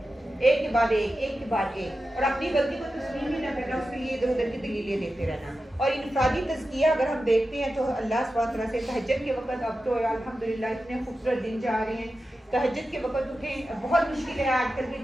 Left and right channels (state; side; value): normal; both; correlation 0.92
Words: ایک کے بعد ایک، اور اپنی غلطی کو تسلیم ہی نہ کرنا، اس کے لیے ادھر ادھر کی دلیلیں دیتے رہنا. اور انفرادی تزکیہ اگر ہم دیکھتے ہیں تو اللہ سبحانہ وتعالیٰ سے تہجد کے وقت، اب تو الحمدللہ اتنے خوبصورت دن جا رہے ہیں، تہجد کے وقت اٹھیں، بہت مشکل ہے آج کل کے